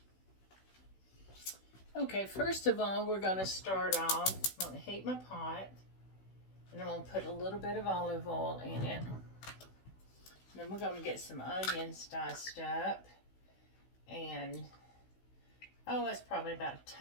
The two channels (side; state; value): right; late; 16 ms